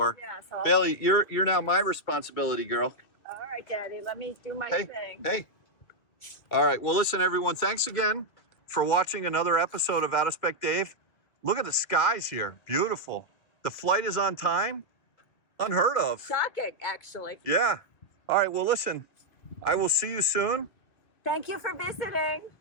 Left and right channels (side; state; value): right; late; 2.1 ms